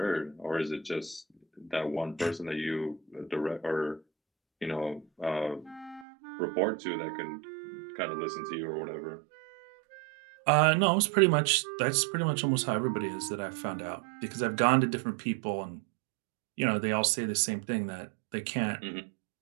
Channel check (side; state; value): left; drops out; at 6.1 s